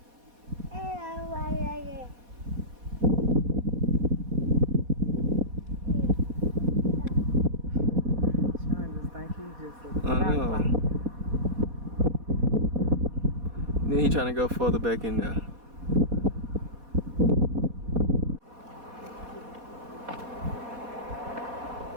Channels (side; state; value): left; late; 4.2 ms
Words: know. Then he trying to go further back in there.